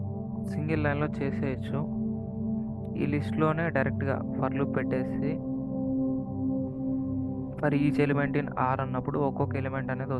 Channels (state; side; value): identical; both; correlation 1.00